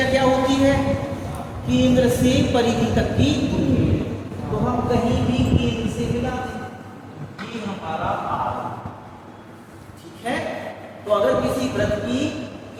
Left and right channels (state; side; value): identical; both; correlation 1.00